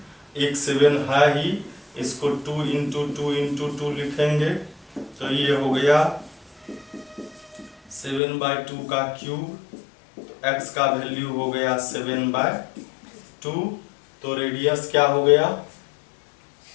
एक 7 है ही, इसको 2 इंटू 2 इंटू 2 लिखेंगे, तो ये हो गया 7/2 का क्यूब। तो x का वैल्यू हो गया 7/2। तो रेडियस क्या हो गया,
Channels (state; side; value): drops out; right; at 8.2 s